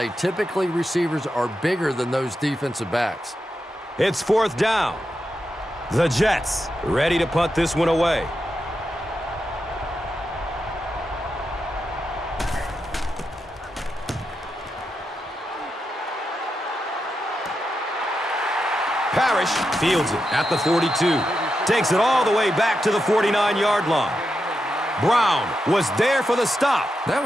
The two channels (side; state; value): both; normal; correlation 0.87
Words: Typically, receivers are bigger than those defensive backs. It's fourth down. The Jets ready to punt this one away. Parrish fields it at the 42. Takes it all the way back to the 49-yard line. Brown was there for the stop. That